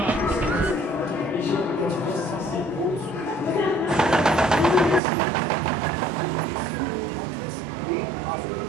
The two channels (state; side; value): drops out; left; at 5.0 s